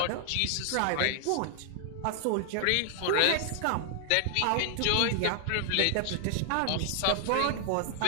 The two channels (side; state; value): both; different; correlation 0.00